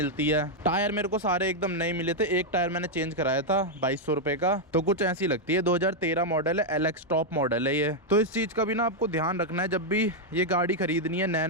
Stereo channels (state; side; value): normal; both; correlation -0.01